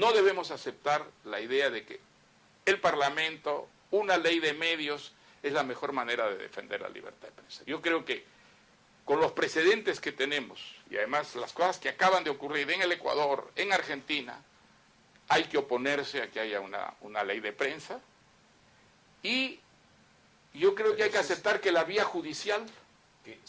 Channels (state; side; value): identical; both; correlation 1.00